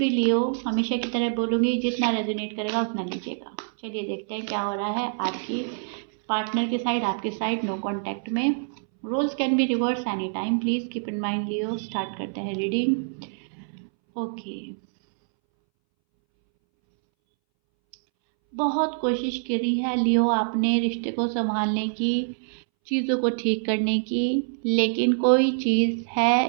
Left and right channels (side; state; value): left; silent; 61 dB below the other